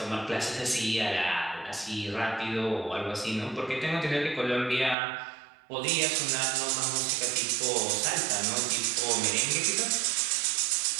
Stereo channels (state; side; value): drops out; left; at 5.0 s